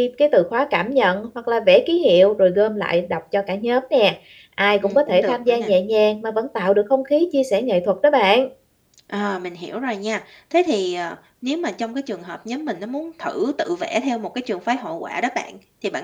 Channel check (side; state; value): both; identical; correlation 1.00